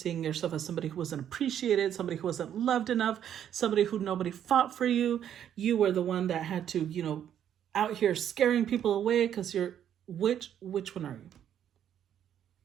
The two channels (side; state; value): left; quieter; 9.8 dB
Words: yourself as somebody who wasn't appreciated, somebody who wasn't loved enough, somebody who nobody fought for you? You were the one that had to, out here scaring people away because you're, which one are you?